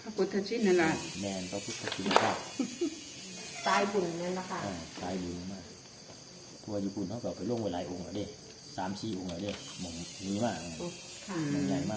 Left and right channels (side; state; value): both; identical; correlation 1.00